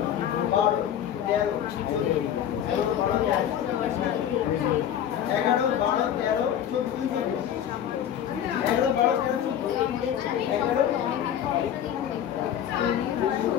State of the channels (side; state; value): right; quieter; 10.0 dB